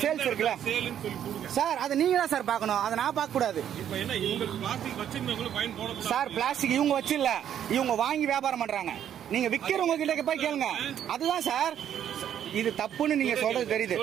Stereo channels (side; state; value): left; quieter; 9.9 dB